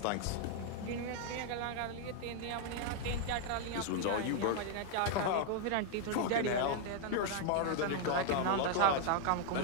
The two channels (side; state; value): both; different; correlation 0.00